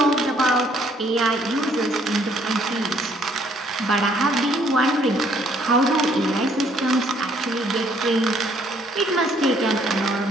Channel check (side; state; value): both; normal; correlation 0.65